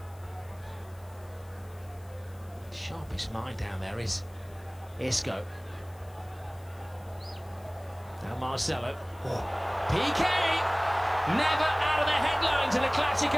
Sharpest mind down there is Isco. Now Marcelo. Piqué! Never out of the headlines in a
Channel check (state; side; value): noise; left; hiss, 27 dB below the sound